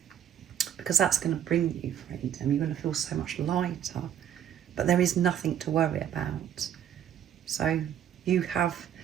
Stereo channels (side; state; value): left; quieter; 9.7 dB